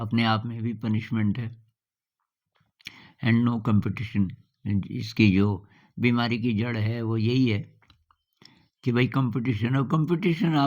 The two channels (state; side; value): identical; both; correlation 1.00